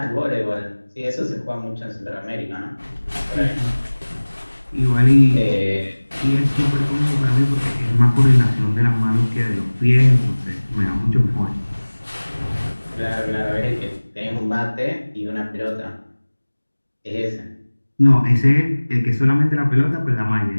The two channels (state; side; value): inverted; both; correlation -1.00